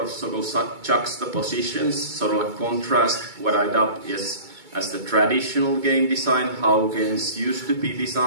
sort of juxtapositions, sort of a contrast, what I dubbed as the traditional game design, how games used to be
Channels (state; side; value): late; left; 2.2 ms